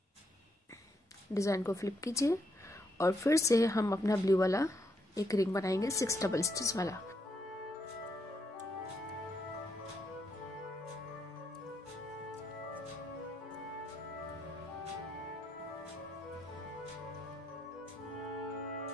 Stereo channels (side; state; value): both; normal; correlation 0.77